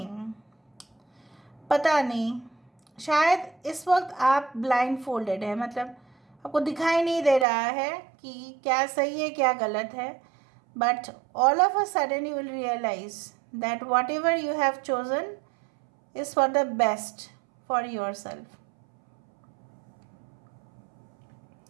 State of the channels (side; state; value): left; drops out; at 7.5 s